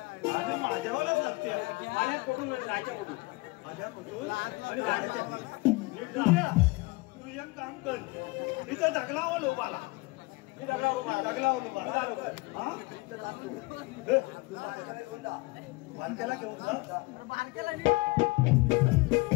आणि माझ्यावरच लागते आल्यात कुठून जायच्या कुठून माझ्या कुठून आणि जायच्या तू एक काम कर इथं दगलावं लोबाला मी दगडावर उभा आहे. दगलावं लोबाला हा तू बारक्याला घेऊन जा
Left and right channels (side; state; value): right; quieter; 23.9 dB